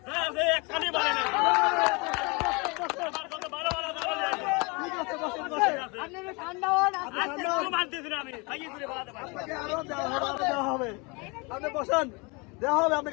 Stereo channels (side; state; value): right; quieter; 28.9 dB